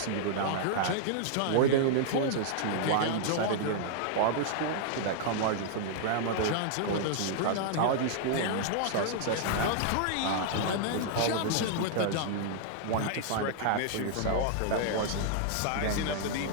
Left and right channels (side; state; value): both; different; correlation -0.01